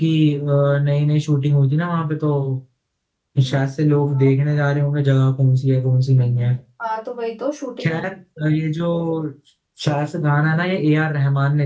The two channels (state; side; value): identical; both; correlation 1.00